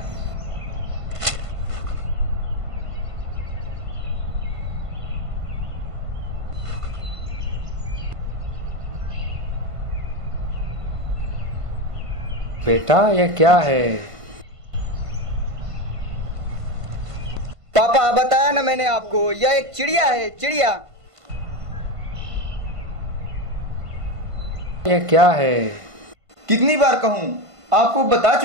बेटा यह क्या है? पापा, बताया ना मैंने आपको, यह एक चिड़िया है, चिड़िया। यह क्या है? कितनी बार कहूं? आपको बता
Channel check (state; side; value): late; left; 1.5 ms